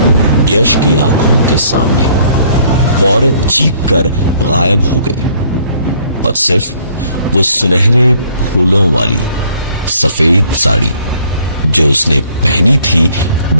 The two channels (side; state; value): both; inverted; correlation -0.60